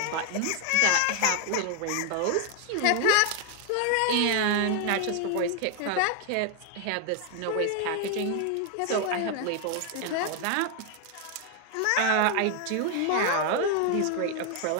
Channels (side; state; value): both; different; correlation 0.00